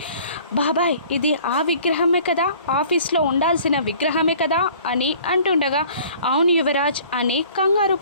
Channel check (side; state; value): both; inverted; correlation -0.51